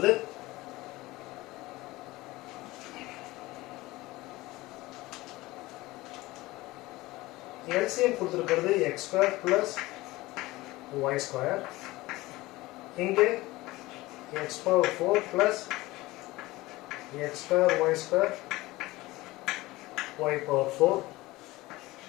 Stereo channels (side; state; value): right; quieter; 19.6 dB